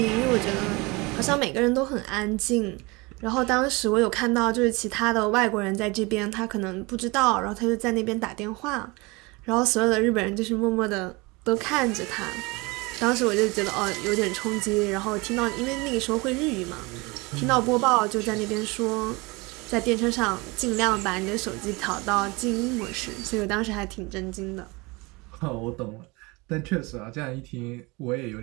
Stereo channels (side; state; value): left; quieter; 25.4 dB